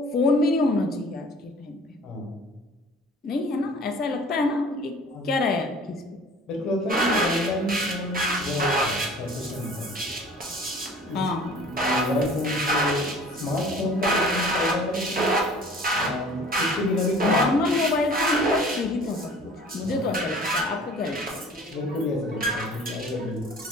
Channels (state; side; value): normal; both; correlation 0.47